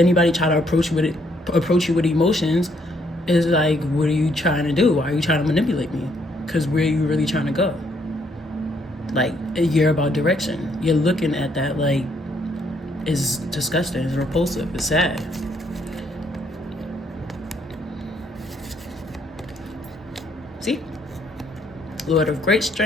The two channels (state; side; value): normal; both; correlation 0.70